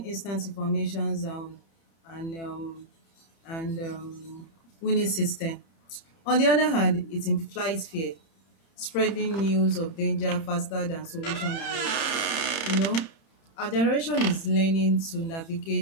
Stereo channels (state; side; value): late; right; 30 ms